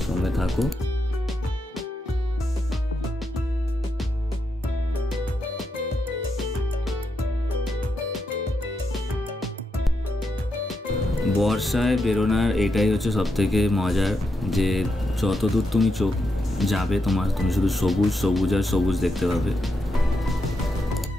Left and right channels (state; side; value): normal; both; correlation 0.83